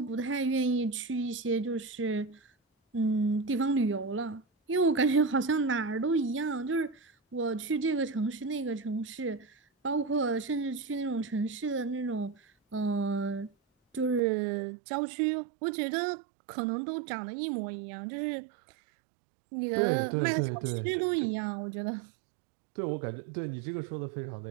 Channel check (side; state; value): left; drops out; at 14.2 s